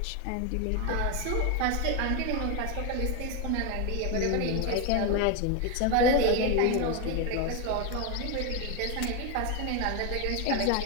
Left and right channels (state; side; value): different; both; correlation 0.02